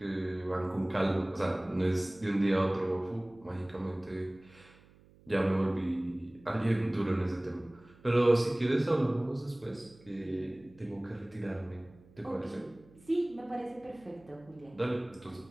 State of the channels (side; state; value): right; noise; hum, 26 dB below the sound